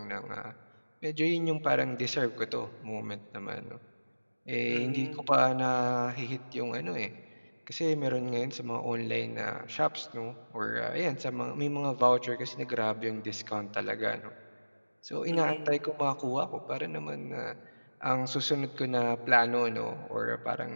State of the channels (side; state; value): both; inverted; correlation -1.00